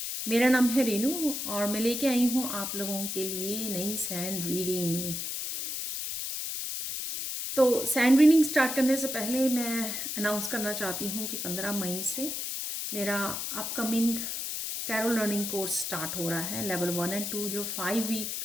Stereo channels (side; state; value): left; noise; hiss, 4 dB below the sound